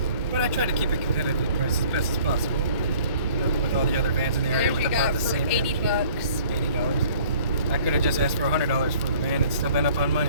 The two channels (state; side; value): inverted; both; correlation -0.53